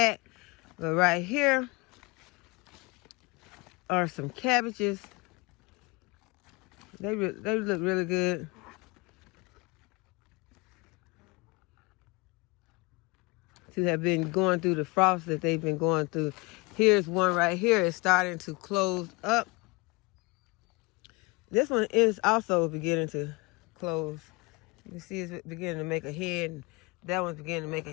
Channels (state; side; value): quieter; right; 26.9 dB